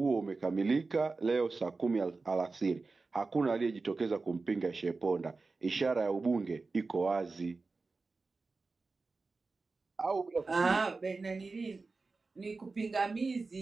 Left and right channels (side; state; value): left; quieter; 3.9 dB